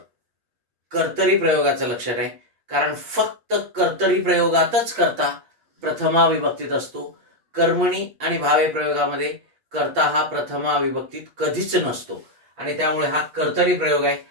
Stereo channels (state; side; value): late; left; 8.4 ms